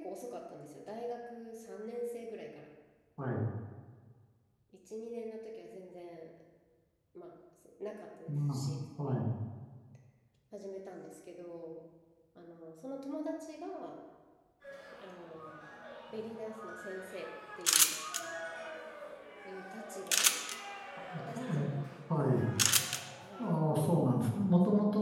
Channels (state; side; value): identical; both; correlation 1.00